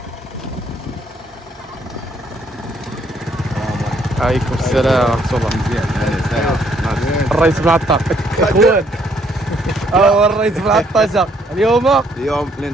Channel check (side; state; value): both; normal; correlation 0.68